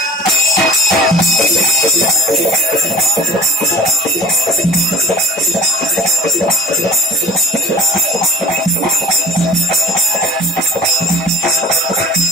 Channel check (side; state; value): both; normal; correlation 0.41